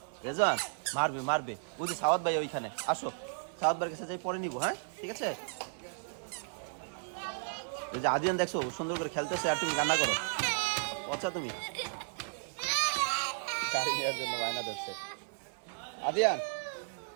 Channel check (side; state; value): left; silent; digital silence